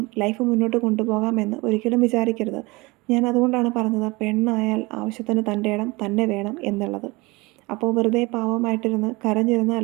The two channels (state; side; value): quieter; left; 23.8 dB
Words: ലൈഫ് മുന്നോട്ട് കൊണ്ടുപോകാമെന്ന് ഒരിക്കലും വിചാരിക്കരുത്. ഞാൻ അതുകൊണ്ടാണ് പറഞ്ഞത്, പെണ്ണായാൽ ആവശ്യത്തിന് തൻ്റെ ഇടം തന്നെ വേണം എന്നുള്ളത്. അപ്പോൾ വെറുതെ പാവമായിട്ടിരുന്ന്